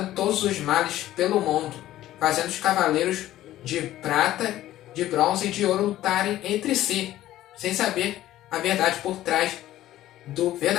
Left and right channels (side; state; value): right; quieter; 14.1 dB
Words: todos os males pelo mundo, fazendo os cavaleiros de prata, de bronze e de ouro lutarem entre si, sem saber a verdade por trás do